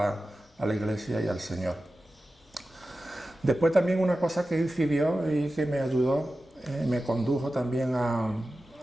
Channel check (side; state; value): both; normal; correlation 0.94